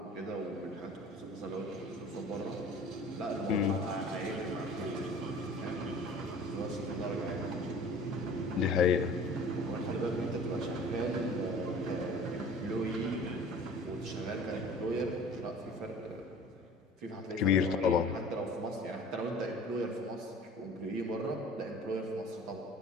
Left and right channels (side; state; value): both; normal; correlation 0.45